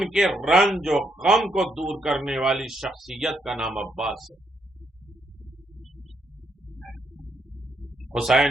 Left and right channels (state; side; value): normal; both; correlation 0.77